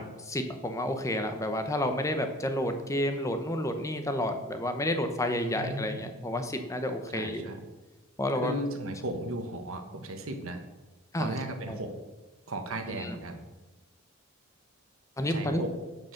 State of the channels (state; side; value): normal; both; correlation 0.47